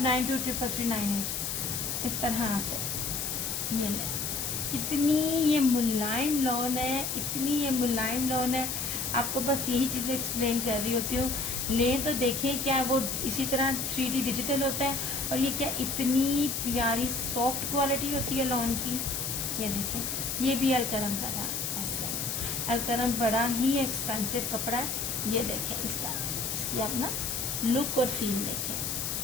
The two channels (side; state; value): left; noise; hiss, 2 dB below the sound